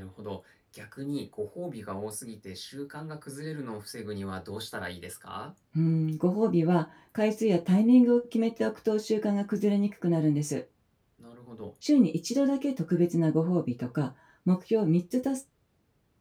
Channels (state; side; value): identical; both; correlation 1.00